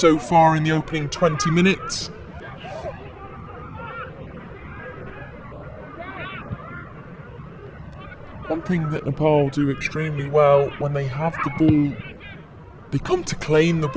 far in the opening 20 minutes. One thing that Nepal do extremely well, when they have the ball, they come to claim the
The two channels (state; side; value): identical; both; correlation 1.00